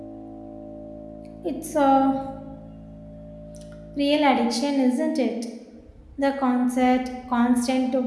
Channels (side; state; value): both; identical; correlation 1.00